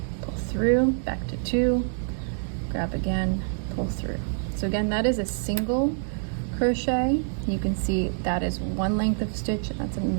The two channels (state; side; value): silent; left; digital silence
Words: pull through, back to 2, grab again, pull through. So again, that is a single crochet. You can see that is 1 length of stitch, and that's